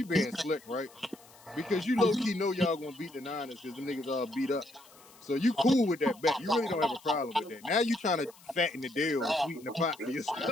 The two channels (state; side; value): noise; left; hiss, 24 dB below the sound